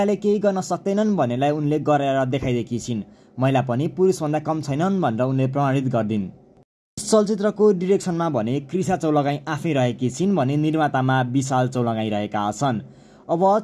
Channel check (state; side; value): identical; both; correlation 1.00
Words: केही गर्न सक्दैनन् भन्नेलाई उनले गरेर देखाइदिएकी छिन्। महिला पनि पुरुषभन्दा कम छैनन् भनेर उनले प्रमाणित गरिदिन्। चलचित्रको डिरेक्सनमा भने क्रिसा चौलगाई आफै रहेकी छिन् भने निर्मातामा विशाल चौलगाई रहेका छन्। अब